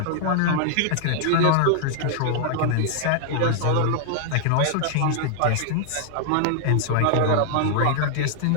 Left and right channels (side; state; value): both; different; correlation 0.00